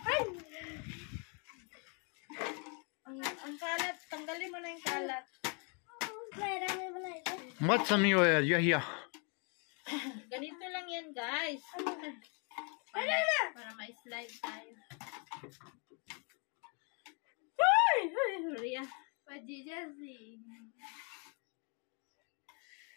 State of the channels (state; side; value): quieter; right; 36.4 dB